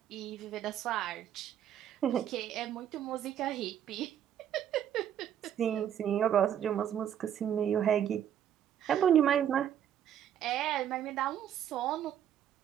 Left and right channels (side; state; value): left; quieter; 10.0 dB